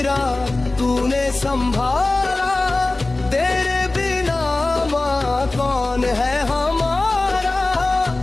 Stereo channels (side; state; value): right; quieter; 3.0 dB